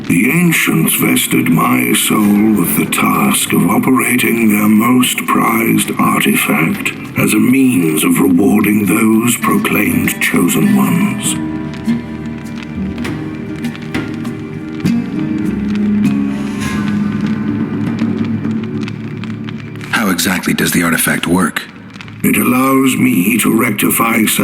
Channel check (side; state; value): both; identical; correlation 1.00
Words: The ancients vested my soul with the task of operating their most prized artifact as a means of rewarding those proclaimed chosen ones. How exactly does the artifact work? It allows me to rectify